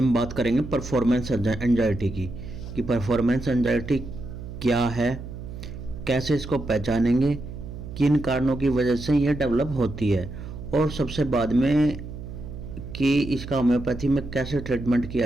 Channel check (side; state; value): right; noise; hum, 10 dB below the sound